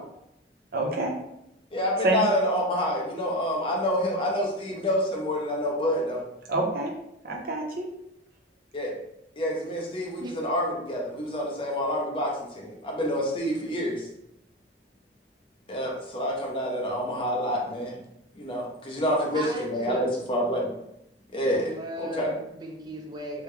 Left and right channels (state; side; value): normal; both; correlation 0.19